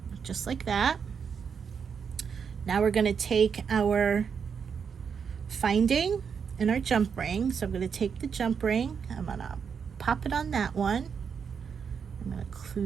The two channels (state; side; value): quieter; left; 6.6 dB